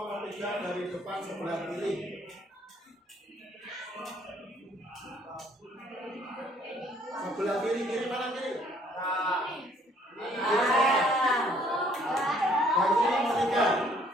3 dari depan sebelah kiri. Sebelah kiri, kiri mana kiri? Bangku nomor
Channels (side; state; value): both; normal; correlation 0.62